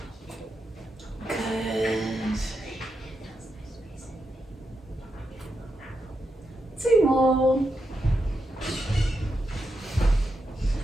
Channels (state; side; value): normal; both; correlation 0.85